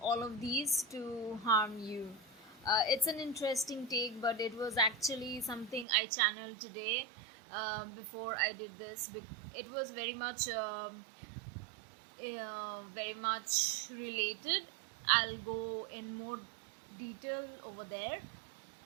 all of these to harm you. It's an interesting take, but it was actually something I channeled today before I did this. It was very much related. I'll go in more detail over there.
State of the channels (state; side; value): drops out; left; at 5.9 s